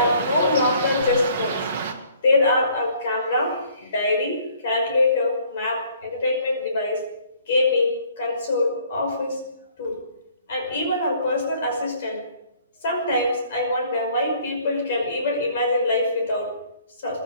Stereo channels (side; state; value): both; inverted; correlation -0.60